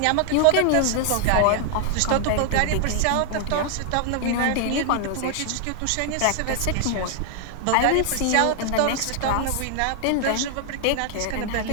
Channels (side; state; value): both; different; correlation 0.00